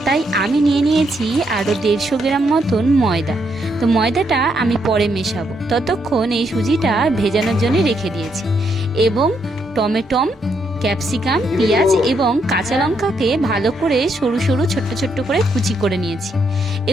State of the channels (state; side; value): normal; both; correlation 0.76